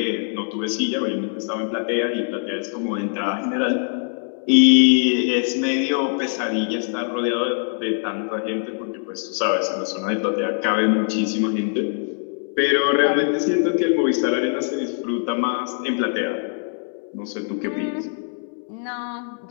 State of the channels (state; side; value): silent; right; 64 dB below the other